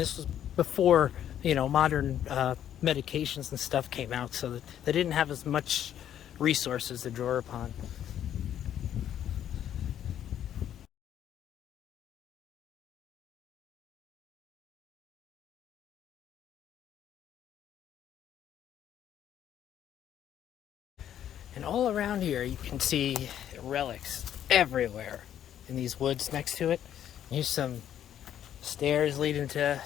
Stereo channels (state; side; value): quieter; right; 10.4 dB